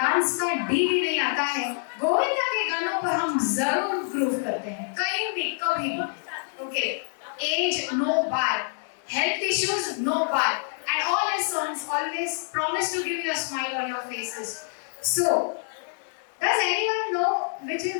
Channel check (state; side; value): silent; right; digital silence